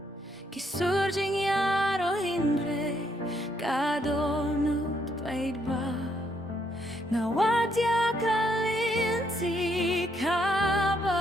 Kisurging yaro hindre kadonut paidba Nawadya kalinti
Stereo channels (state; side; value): normal; both; correlation 0.74